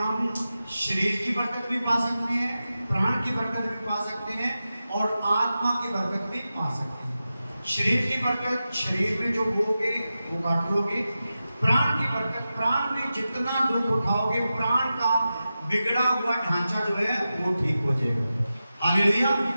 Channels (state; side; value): inverted; both; correlation -0.92